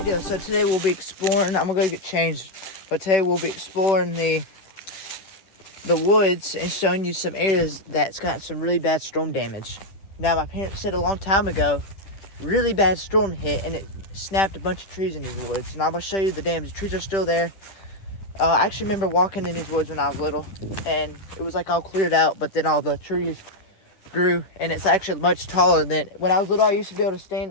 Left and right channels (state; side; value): late; right; 10 ms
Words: So today we'll be exploring. I'm gonna go get changed, but today we'll be exploring the woods and showing you some areas that's got some really bad storm damage. Now, my parents said a long time ago, really bad storm hit and it snapped a bunch of trees in these woods. And I'm gonna show you the damage. The trees are still there. I actually remember walking in these woods when I was little, and it was like all cleared out, but then all the trees grew, and it's actually much taller than when I was little. I used to be able to stand